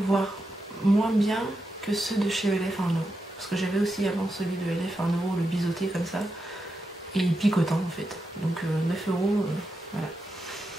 voire moins bien que ceux de chez ELF 1 €. Parce que j'avais aussi avant celui de ELF 1 €, le biseauté comme ça. Et picotant en fait. Donc 9 €, voilà.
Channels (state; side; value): normal; both; correlation 0.87